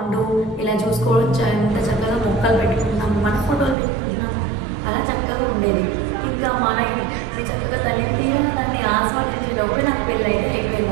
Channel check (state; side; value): drops out; left; at 3.8 s